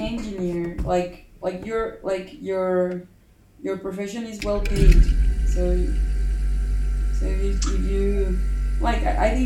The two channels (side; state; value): both; identical; correlation 1.00